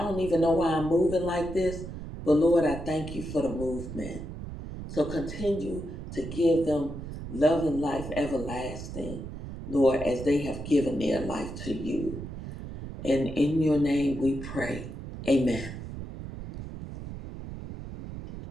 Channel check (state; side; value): noise; right; rumble, 9 dB below the sound